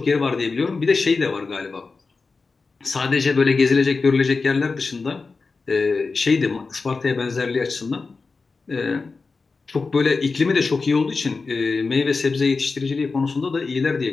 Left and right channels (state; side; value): quieter; right; 4.2 dB